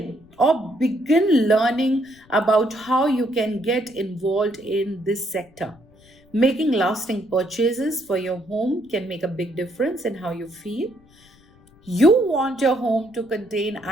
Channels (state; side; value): noise; left; rumble, 29 dB below the sound